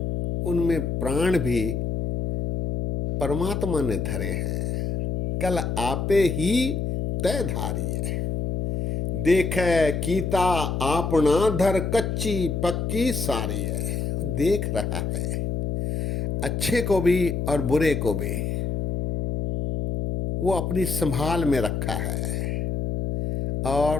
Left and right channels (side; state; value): left; noise; hum, 1 dB below the sound